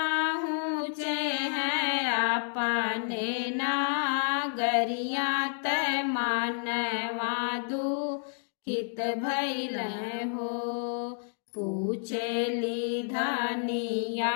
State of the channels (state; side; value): silent; right; 58 dB below the other